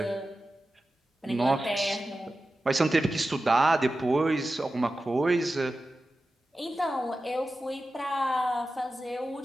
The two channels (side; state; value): both; normal; correlation 0.93